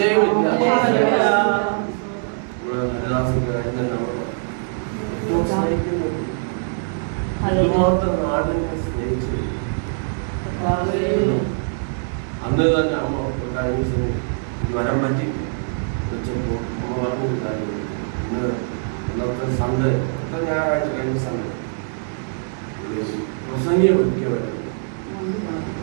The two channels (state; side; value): silent; left; digital silence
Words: അതുമാത്രം നാടിനെ സ്നേഹിച്ചു. അന്ന് തന്നെ അമ്മ കഴിഞ്ഞ വരം പറ്റി വെച്ചപ്പോ അമ്മ പറഞ്ഞൊരു കാര്യം, ഇന്ന് ഇന്നത്തെ സൺഡേ ഞായറാഴ്ച കഴിഞ്ഞ സൺഡേ പ്രസംഗിയെ ഒരിക്കലും